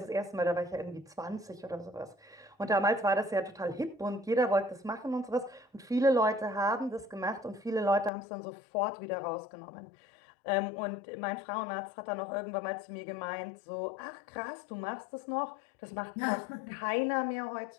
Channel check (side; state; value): right; drops out; at 8.1 s